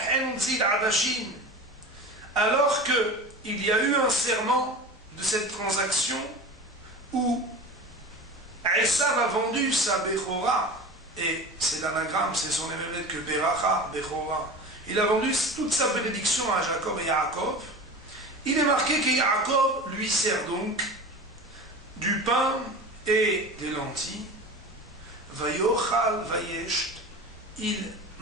zid adashin. Alors qu'il y a eu un serment de cette transaction où Esav a vendu sa Bechora, et c'est l'anagramme, c'est son émerveille que Beracha, Bechora. Il a vendu toute sa bénédiction à Jacob et Yaakov. Il est marqué que Yaakov lui sert donc du pain et des lentilles. Vayochal vayesht, il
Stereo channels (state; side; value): normal; both; correlation 0.33